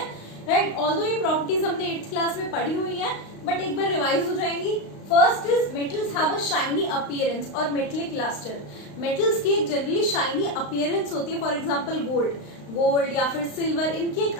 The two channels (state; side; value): late; right; 35 ms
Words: राइट। ऑल्दो ये प्रॉपर्टीज हमने 8th क्लास में पढ़ी हुई है बट एक बार रिवाइज हो जाएंगी। First is metals have a shiny appearance और मेटलिक लस्टर। मेटल्स की एक जनरली शाइनी अपीयरेंस होती है। फॉर एग्जांपल गोल्ड या फिर सिल्वर, इनकी एक